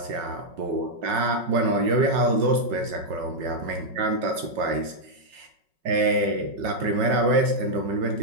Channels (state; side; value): late; left; 5.4 ms